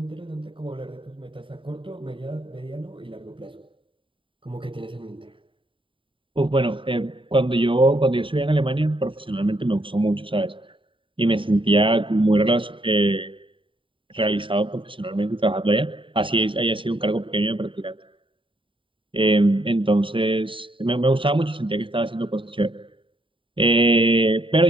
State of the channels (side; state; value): left; late; 0.25 ms